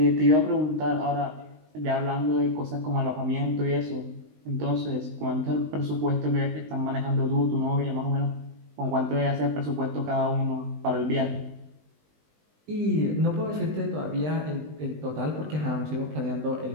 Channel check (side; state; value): left; late; 20 ms